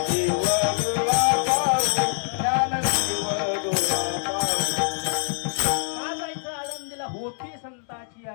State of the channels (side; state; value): right; silent; 62 dB below the other